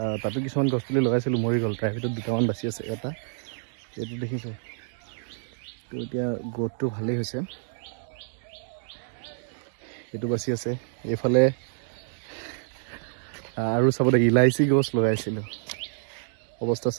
তাতো কিছুমান গছ পুলি লগাইছিলোঁ মৰি গ'ল, তাৰ ভিতৰত দুটামান বাচি আছে। এটা এইটো দেখিছোঁ, তো এতিয়া গ্ৰ'থটো ভালেই হৈছে, এইটো বাচি আছে। এইফালে আৰু চাব দে ইলাইচি গছ লগাইছিলোঁ, অৱস্থা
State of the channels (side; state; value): left; silent; digital silence